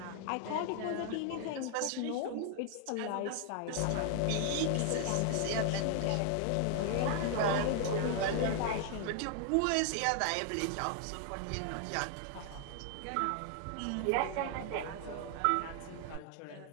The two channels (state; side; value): different; both; correlation 0.00